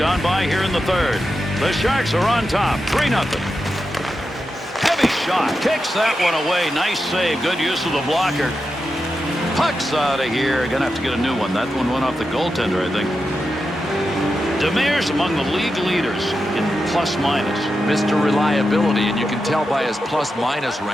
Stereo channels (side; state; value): both; normal; correlation 0.89